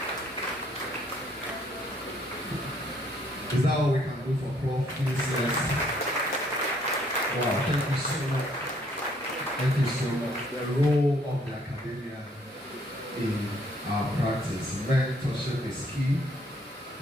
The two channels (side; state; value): both; normal; correlation 0.65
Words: Is that what we can do for Prof? Please, yes. Wow, thank you so much. Thank you so much. The role of the academia in our practice. Mentorship is key.